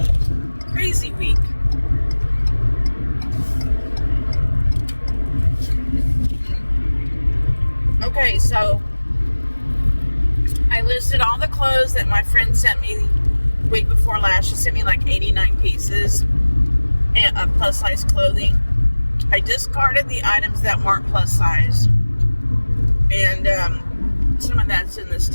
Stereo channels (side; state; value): both; inverted; correlation -1.00